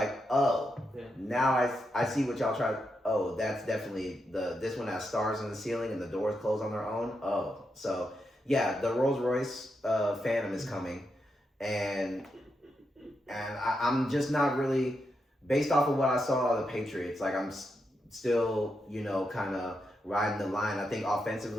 oh, now I see what y'all try. Oh, that's definitely this one has stars in the ceiling and the doors close on their own. Oh, so yeah, the Rolls Royce Phantom is coming. And I'm just not really, based off of what I saw of the Patriots, like, I'm still, you know, kind of riding the line. I think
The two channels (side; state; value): both; normal; correlation 0.84